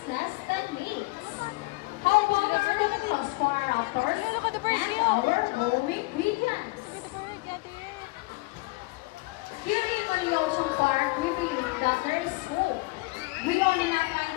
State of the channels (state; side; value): quieter; right; 24.0 dB